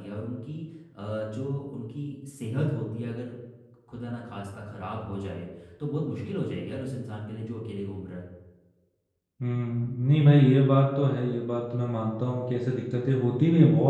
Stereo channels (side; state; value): both; identical; correlation 1.00